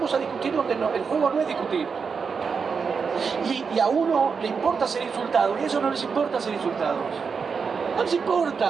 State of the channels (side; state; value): left; quieter; 5.6 dB